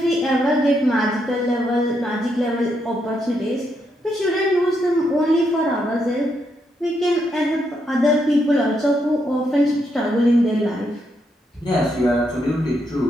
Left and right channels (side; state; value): both; normal; correlation 0.79